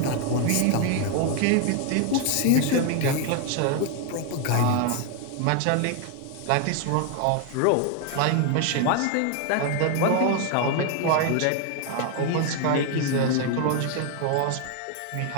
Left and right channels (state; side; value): different; both; correlation 0.01